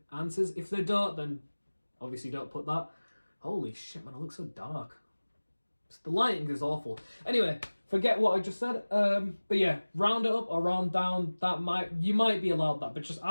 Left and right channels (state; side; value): inverted; both; correlation -1.00